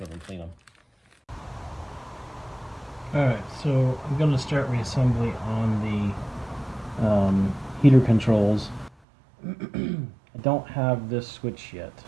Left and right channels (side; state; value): left; drops out; at 8.9 s